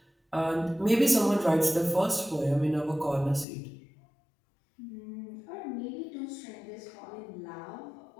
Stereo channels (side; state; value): right; drops out; at 3.5 s